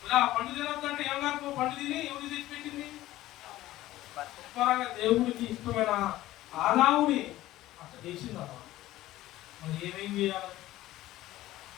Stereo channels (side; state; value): right; quieter; 15.7 dB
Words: ఇలా పండు తినొద్దంటే ఏం కాదు పండు తిని ఎవరు తెచ్చి పెట్టింది శుభ్రంగా దేవుడికి ఇష్టమైన ఆదావుని అట్లా చేసింది అమ్మ మరి ఏమేం చేయాలి